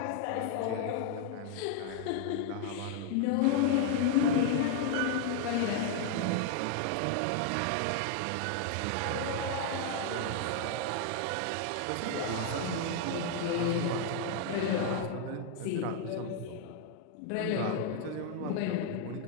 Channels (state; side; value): different; both; correlation 0.00